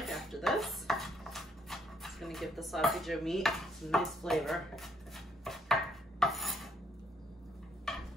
after this. It's gonna give the sloppy joe meat some nice flavor.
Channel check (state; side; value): normal; both; correlation 0.69